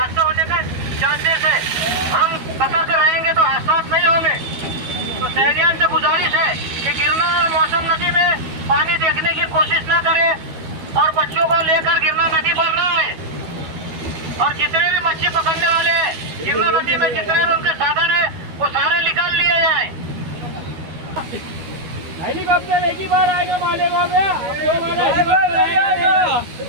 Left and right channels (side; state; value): left; late; 12 ms